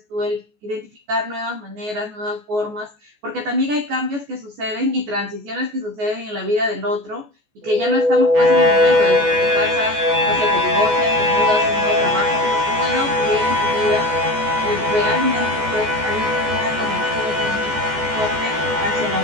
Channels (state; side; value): late; left; 14 ms